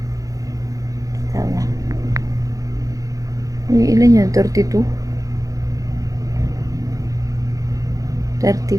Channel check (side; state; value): left; late; 0.17 ms